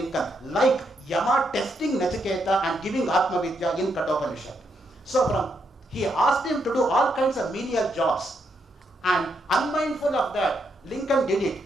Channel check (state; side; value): normal; both; correlation 0.78